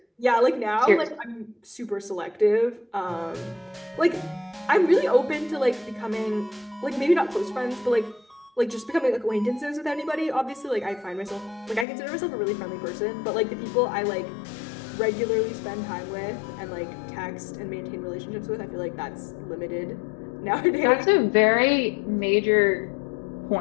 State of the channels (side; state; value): right; drops out; at 11.9 s